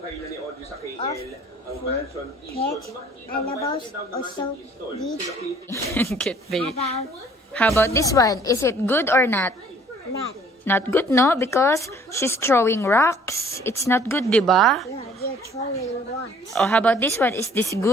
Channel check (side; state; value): both; normal; correlation 0.56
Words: of food. Pet animals also need Get babe. How about this one? Is it good or not? not. Not good, no? Because she's throwing rocks. It's not good, diba? Yeah, they're throwing rocks. Oh, how about this one? Is this